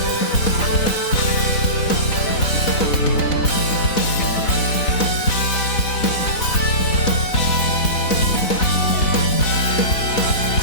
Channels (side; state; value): right; late; 4.1 ms